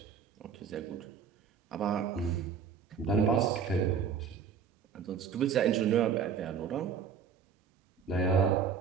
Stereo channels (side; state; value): left; quieter; 6.8 dB